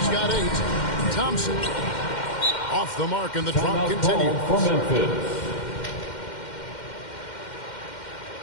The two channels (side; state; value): right; late; 2.1 ms